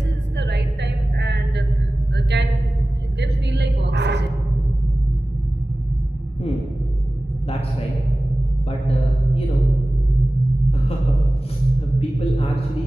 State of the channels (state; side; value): normal; both; correlation 0.97